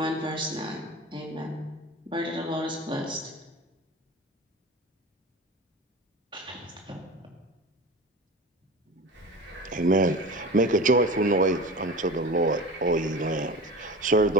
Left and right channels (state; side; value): normal; both; correlation 0.33